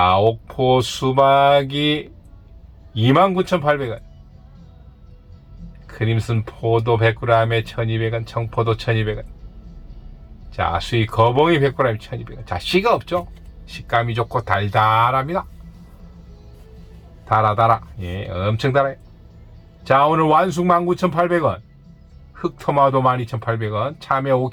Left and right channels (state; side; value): identical; both; correlation 1.00